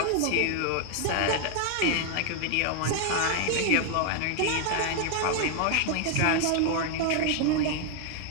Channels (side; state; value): both; different; correlation 0.00